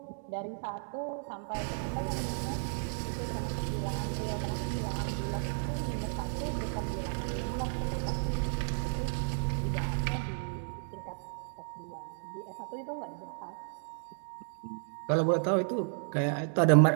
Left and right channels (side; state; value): left; silent; digital silence